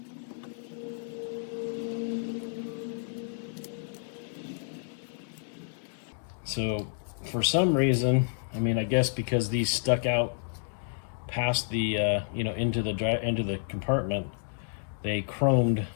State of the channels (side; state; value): right; silent; digital silence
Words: So for some reason, I mean, I guess because these stuck out past the into the compartment, they chromed